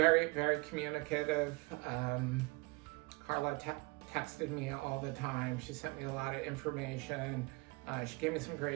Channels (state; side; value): quieter; left; 26.4 dB